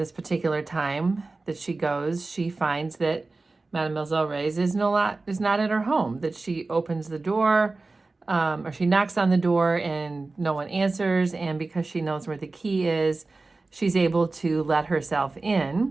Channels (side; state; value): left; quieter; 3.5 dB